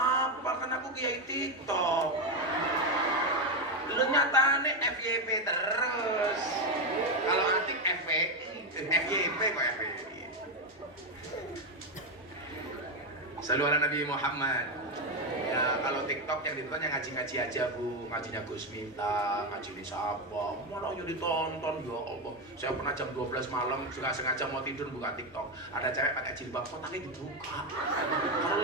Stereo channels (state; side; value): normal; both; correlation 0.09